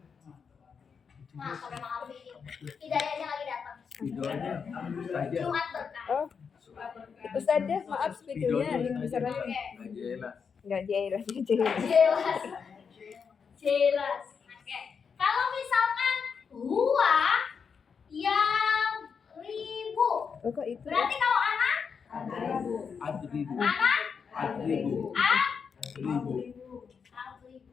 Nah, kalau memang arti ini hidayahnya lagi datang. Videonya saja. Jumat berkah. Oh, Ustazah, maaf videonya link besar lagi. Oke. Jelas. Enggak jelas, jelas. Jelas. Jelas. Oke. Kalau misalkan huwa yang ribu. Oh, kok itu? Berarti kalau anak Adribu. anak Adribu. ribu.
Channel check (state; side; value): quieter; right; 6.2 dB